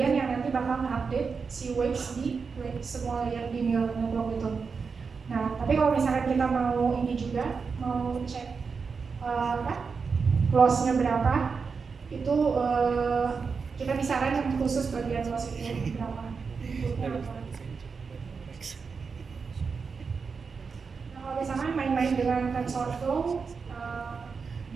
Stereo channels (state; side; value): quieter; left; 5.3 dB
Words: yang nanti bakal mengupdate si weights di semua layer di neural network itu. Nah, tapi kalau misalkan kita mau ini juga, mau cek loss-nya berapa, itu kita bisa run yang khusus bagian loss itu berapa. Nah, kalau misalkan main-main dengan TensorFlow,